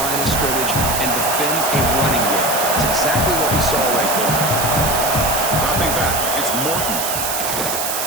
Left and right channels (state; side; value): noise; right; hiss, 2 dB below the sound